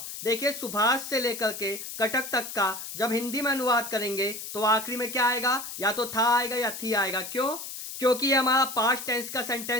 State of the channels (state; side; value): noise; left; hiss, 9 dB below the sound